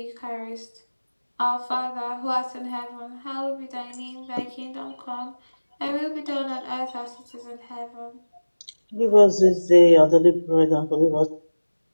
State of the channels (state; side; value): inverted; both; correlation -1.00